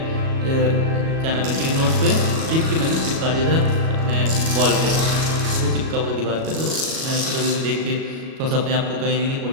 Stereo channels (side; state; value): left; late; 37 ms